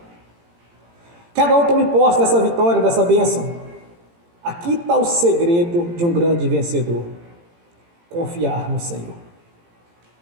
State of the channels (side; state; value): left; late; 17 ms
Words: Cada um tome posse dessa vitória, dessa bênção. Aqui está o segredo de um grande vencedor. Confiar no Senhor.